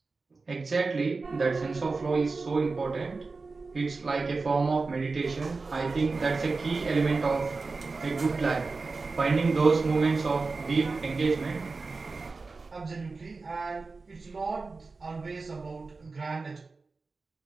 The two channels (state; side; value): quieter; left; 4.0 dB